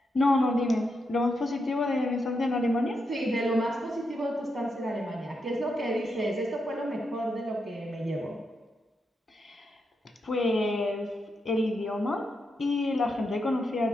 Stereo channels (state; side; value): normal; both; correlation 0.84